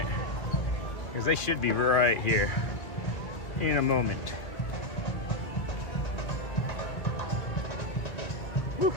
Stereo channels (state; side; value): late; right; 2.2 ms